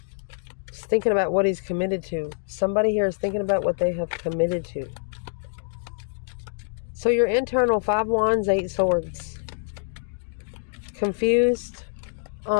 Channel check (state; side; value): silent; right; digital silence